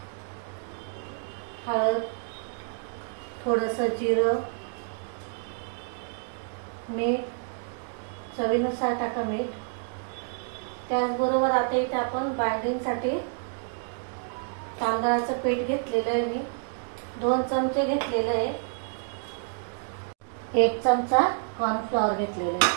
हळद, थोडंसं जिरं, मीठ, चवीनुसार टाका मीठ. त्याचबरोबर आता इथे आपण बाइंडिंगसाठी तांदळाचं पीठ घेतलेलं आहे. मी 2 चमचे घेतलेलं आहे. 1 चमचा कॉर्नफ्लॉवर घेतलेला आहे.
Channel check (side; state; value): left; silent; 59 dB below the other